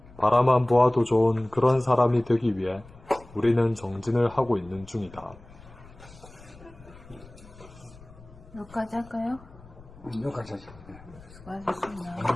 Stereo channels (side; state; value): left; noise; rumble, 21 dB below the sound